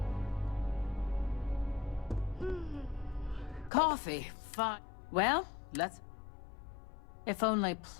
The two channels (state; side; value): drops out; right; at 3.7 s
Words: Coffee. Fine. Well, let's... If only